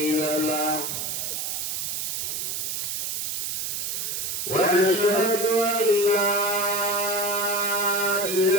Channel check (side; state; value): right; noise; hiss, 2 dB below the sound